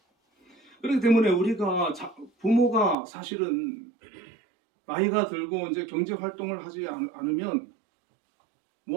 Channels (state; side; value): drops out; left; at 3.0 s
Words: 그렇기 때문에 우리가 부모가 사실은 나이가 들고 이제 경제 활동을 하지 않으면